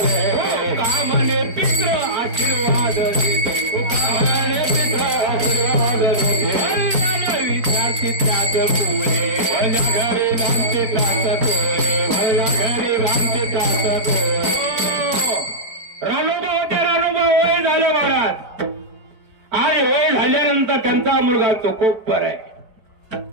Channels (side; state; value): left; late; 4.5 ms